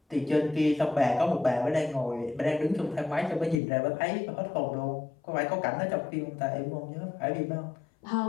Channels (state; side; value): drops out; right; at 3.6 s